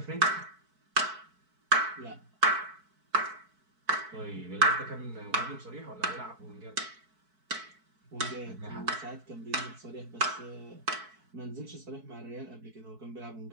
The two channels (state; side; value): late; left; 4.6 ms